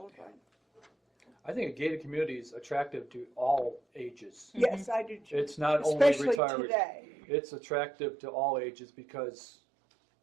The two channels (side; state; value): left; drops out; at 6.4 s